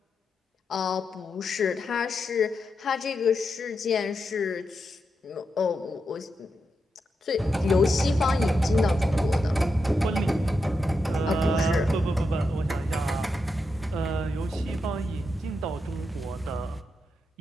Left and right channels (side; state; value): both; normal; correlation 0.86